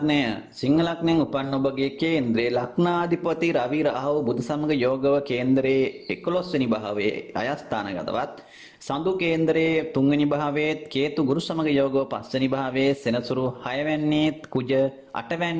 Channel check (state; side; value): identical; both; correlation 1.00